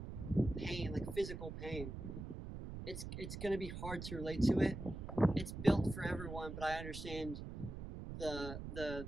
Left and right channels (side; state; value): right; noise; rumble, 8 dB below the sound